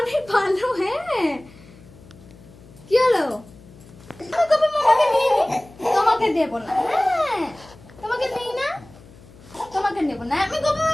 অনেক ভালো। হ্যাঁ, কি হলো? আমি গোপা মামাকে নিয়ে নি, তোমাকে দেবো না। হ্যাঁ, তোমাকে নেই না, তোমাকে নেবো না। আমি গোপা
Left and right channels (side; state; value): left; noise; hum, 23 dB below the sound